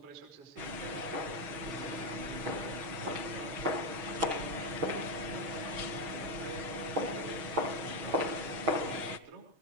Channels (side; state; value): left; late; 6.4 ms